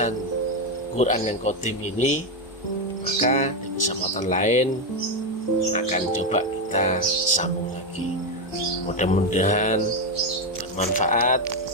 Quran yang qadim ini, maka di kesempatan lain akan coba kita sambung lagi. Mudah-mudahan bermanfaat.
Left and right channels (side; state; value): both; normal; correlation 0.08